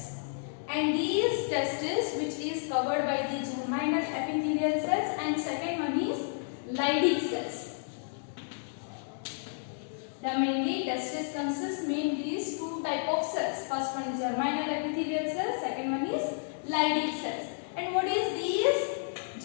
And these testes which is covered by the germinal epithelial cells, and second one is Leydig cells. The mainly testes consists mainly these two type of cells. First one is germinal epithelial cells, second one is Leydig cells. And what is these?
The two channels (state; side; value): silent; right; digital silence